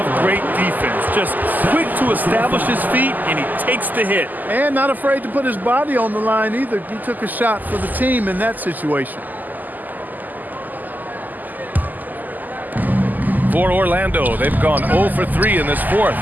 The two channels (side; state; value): left; late; 0.084 ms